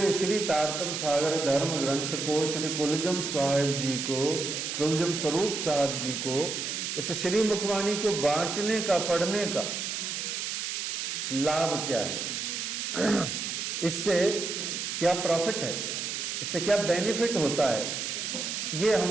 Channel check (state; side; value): noise; right; hiss, 3 dB below the sound